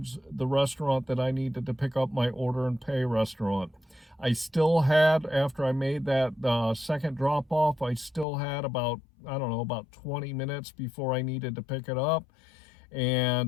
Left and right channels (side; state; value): right; drops out; at 8.2 s